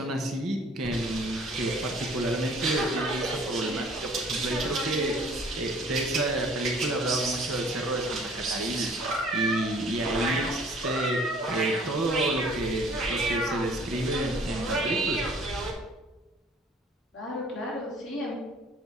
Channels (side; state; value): both; normal; correlation 0.53